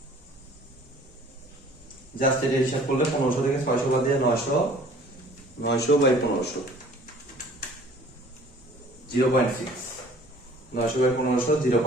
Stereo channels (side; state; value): both; normal; correlation 0.51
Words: জাস্ট এটা হিসাব করলে 1500 থেকে 600 বাদ দিয়ে 900 বাই 1500 0.6, 900 বাই 1500